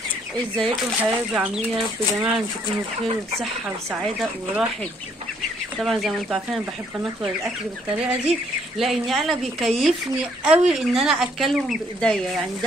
ازيكم حبايبي؟ عاملين يا رب يا جماعة ان تكونوا بخير وبصحة وسعادة وراحة. طبعا زي ما انتوا عارفين انا بحب انطور الاكل بالطريقة دي، لان انا بيكيفني قوي ان انا اكلهم بايديا، يعني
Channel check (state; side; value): normal; both; correlation 0.67